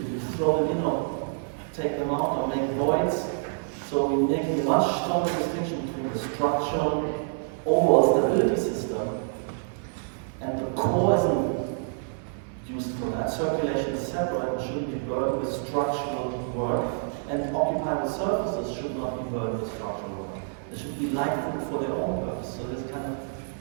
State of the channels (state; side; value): silent; left; 60 dB below the other